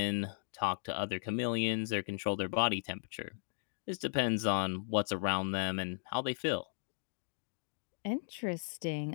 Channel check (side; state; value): right; silent; digital silence